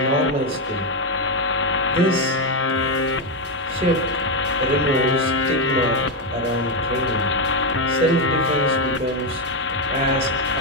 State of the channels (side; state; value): both; normal; correlation 0.06